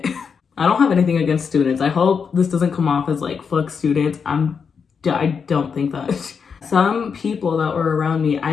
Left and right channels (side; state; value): right; quieter; 6.1 dB